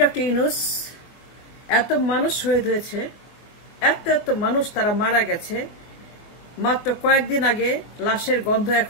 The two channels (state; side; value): late; right; 24 ms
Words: doctor Yunus, এত মানুষ শহীদ হয়েছে, এত এত মানুষ তারা মারা গেছে। মাত্র কয়েকদিন আগে লাশের গন্ধ